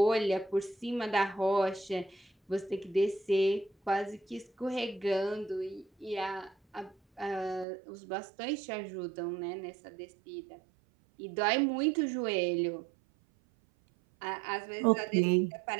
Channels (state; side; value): drops out; left; at 7.7 s